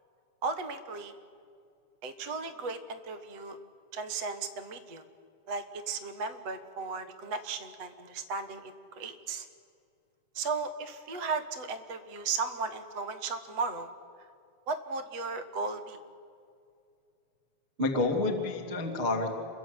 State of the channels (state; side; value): late; left; 7.9 ms